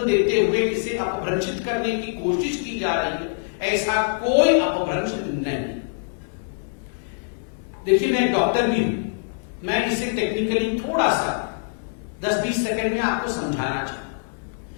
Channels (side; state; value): right; silent; digital silence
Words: देते हुए इसे अपभ्रंशित करने की कोशिश की जा रही है, ऐसा कोई अपभ्रंश नहीं। देखिए, मैं एक डॉक्टर भी हूं, मैं इसे टेक्निकली थोड़ा सा 10-20 सेकंड में आपको समझाना